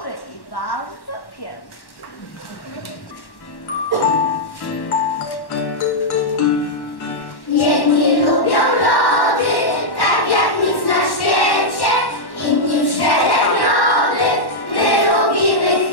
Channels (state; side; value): late; right; 1.1 ms